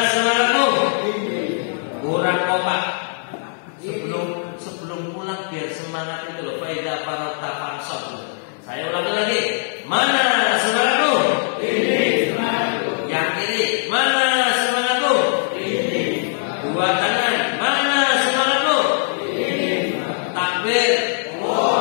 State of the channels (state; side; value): silent; right; digital silence